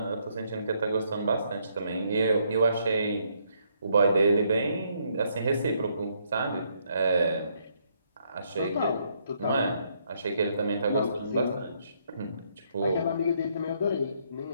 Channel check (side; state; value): both; inverted; correlation -0.72